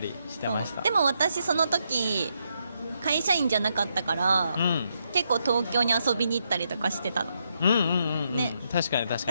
してました。そうでも私その時会社員じゃなかったから、うん結構東京に遊びに行ったりとかしてたの。うんうんうんうん、ね確かに確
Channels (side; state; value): both; inverted; correlation -0.80